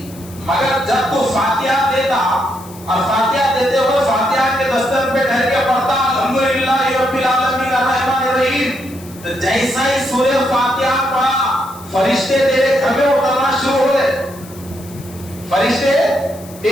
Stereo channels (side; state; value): left; noise; hiss, 20 dB below the sound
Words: مگر جب تو فاتحہ دیتا اور فاتحہ دیتے ہوئے فاتحہ کے دستر پہ ٹھہر کے پڑھتا الحمدللہ رب العالمین الرحمن الرحیم، تو جیسا ہی سورہ فاتحہ پڑھا فرشتے تیرے گھر میں اترنا شروع ہو گئے، فرشتے